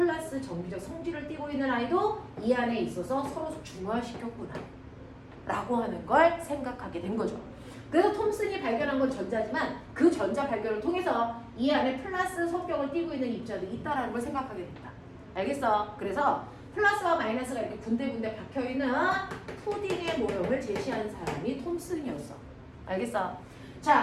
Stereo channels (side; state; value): both; identical; correlation 1.00